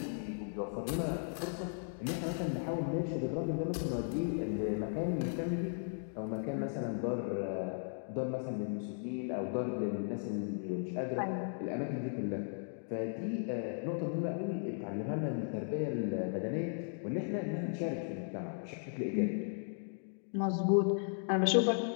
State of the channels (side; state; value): right; silent; digital silence